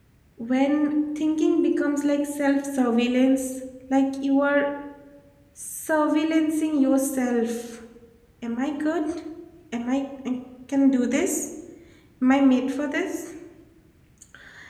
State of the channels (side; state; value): both; identical; correlation 1.00